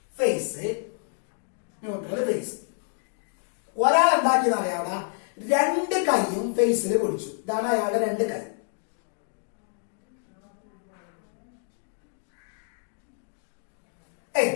ഫേസ്, ന്യൂട്രൽ, ഫേസ്. ഒരാൾ എന്താക്കിയെന്ന് അറിയാം, രണ്ട് കൈയും ഫേസിൽ പിടിച്ചു. ഇതാണ് അയാളുടെ രണ്ട് കൈ.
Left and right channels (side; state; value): right; silent; digital silence